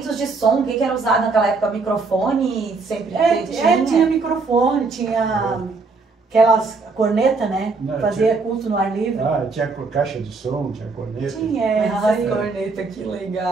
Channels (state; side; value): quieter; left; 4.1 dB